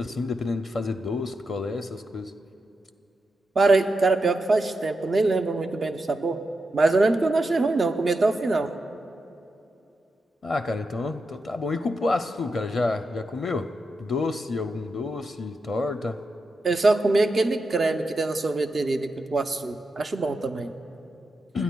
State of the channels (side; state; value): both; normal; correlation 0.87